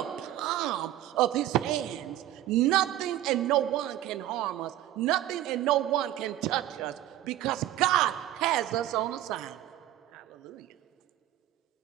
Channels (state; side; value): quieter; left; 13.5 dB